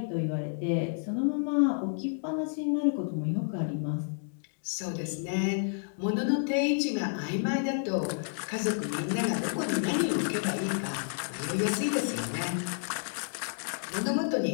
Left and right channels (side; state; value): right; silent; digital silence